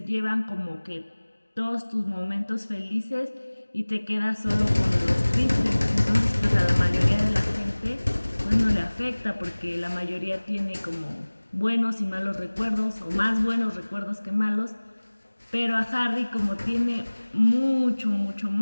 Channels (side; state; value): both; inverted; correlation -1.00